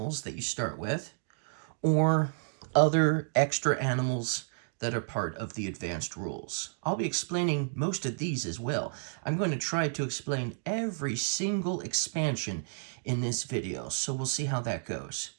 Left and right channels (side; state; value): left; silent; digital silence